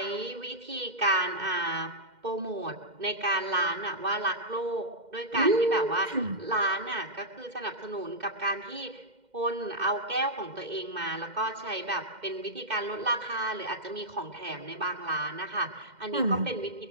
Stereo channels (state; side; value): late; left; 2.1 ms